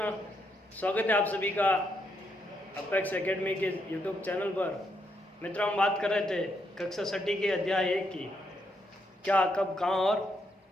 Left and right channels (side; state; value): both; normal; correlation 0.78